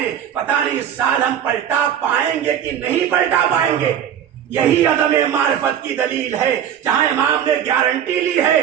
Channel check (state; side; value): quieter; left; 9.5 dB